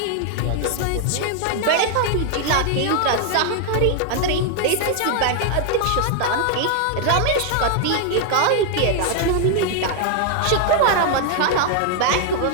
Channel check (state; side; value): different; both; correlation 0.00